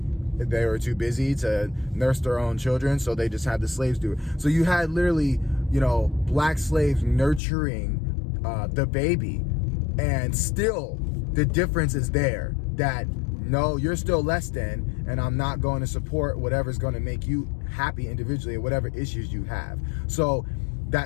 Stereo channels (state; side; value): drops out; right; at 7.4 s